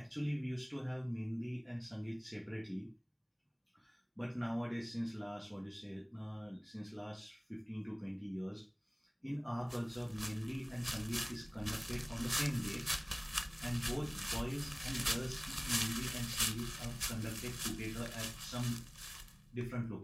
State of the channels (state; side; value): identical; both; correlation 1.00